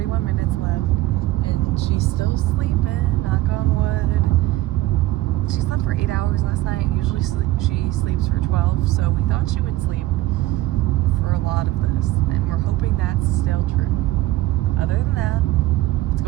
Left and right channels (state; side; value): quieter; left; 16.4 dB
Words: minutes left, and she's still sleeping, knock on wood. She slept for 8 hours last night. Usually she sleeps for 12, so we thought she would sleep for a lot of this, and we're hoping that's still true. Other than that, it's